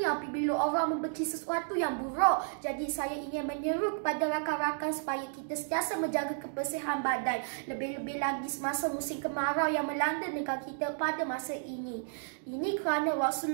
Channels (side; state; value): left; silent; digital silence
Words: apabila orang membenci sesuatu yang buruk. Jadi saya ingin menyeru kepada rakan-rakan supaya kita sentiasa menjaga kebersihan badan. Lebih-lebih lagi semasa musim kemarau yang melanda negara kita pada masa ini. Ini kerana